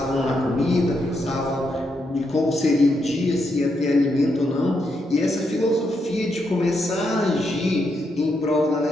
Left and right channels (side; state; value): both; normal; correlation 0.80